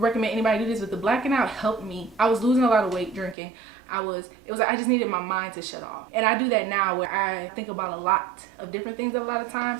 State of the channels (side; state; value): left; drops out; at 3.4 s